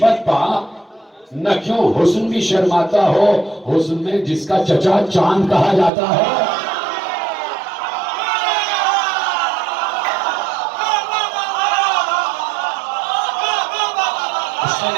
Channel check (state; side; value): drops out; left; at 5.9 s